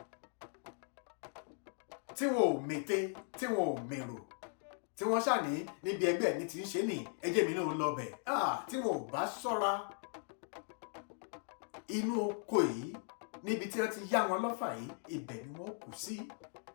tí wọn ò mète, tí wọn ò mèrò, tí wọ́n ṣàní níbi ẹgbẹ́ mi ti ń ṣe ní ẹjẹ́ mi náà lọ bẹ̀. Tí wọn ò bá ṣọ́ra, inú oko yìí níbi tí wọ́n ti yá wọn lọ́fà yìí, ibẹ̀ ni wọ́n kù sí.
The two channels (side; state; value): right; silent; 52 dB below the other